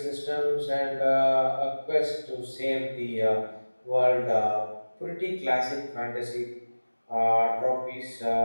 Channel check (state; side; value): inverted; both; correlation -1.00